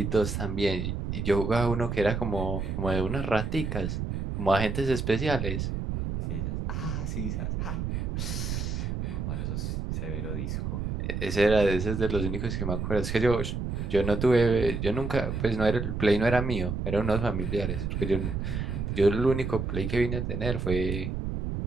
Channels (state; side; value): noise; right; rumble, 3 dB below the sound